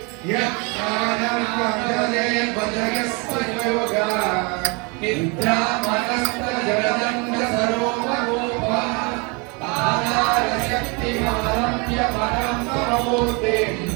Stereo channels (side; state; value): left; quieter; 30.6 dB